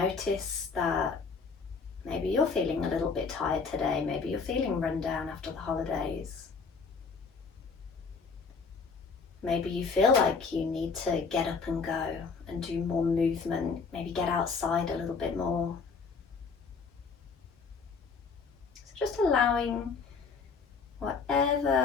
that maybe you're feeling a little bit tired today. Maybe you're feeling run down after the holidays. Maybe you feel like you need to get up and go and do more movement. Maybe get outside a little bit more. So just allowing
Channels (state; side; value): quieter; right; 5.0 dB